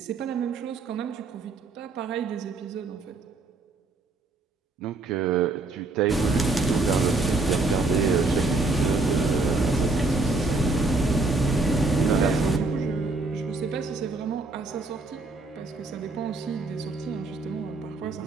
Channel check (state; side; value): quieter; left; 3.4 dB